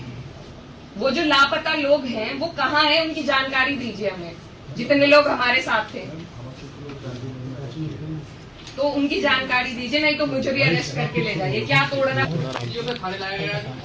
वो जो लापता लोग हैं वो कहाँ हैं, उनकी जानकारी दीजिए हमें। जितने लोग हमारे साथ थे तो उनकी जानकारी दीजिए, नहीं तो मुझे भी अरेस्ट करके ले जाइए। क्या तोड़ना?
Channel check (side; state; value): both; identical; correlation 1.00